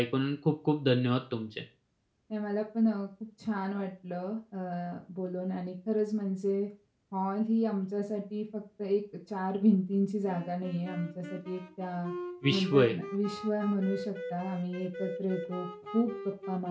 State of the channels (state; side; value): identical; both; correlation 1.00